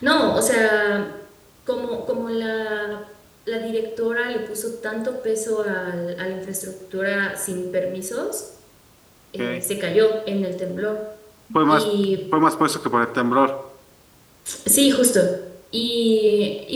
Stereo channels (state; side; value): identical; both; correlation 1.00